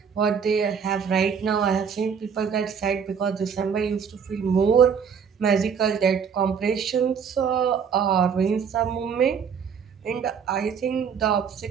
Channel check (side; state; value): left; quieter; 6.8 dB